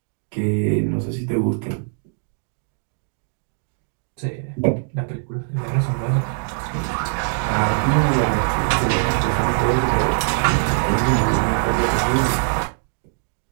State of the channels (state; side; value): silent; left; digital silence